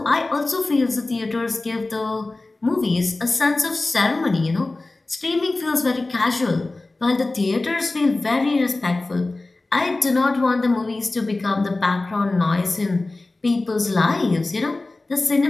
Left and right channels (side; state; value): right; quieter; 3.1 dB